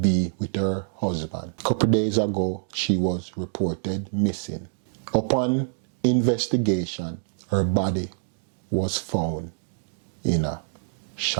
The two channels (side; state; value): left; silent; digital silence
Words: with her husband. A couple days ago, she was reported missing. Upon investigation, her body was found in a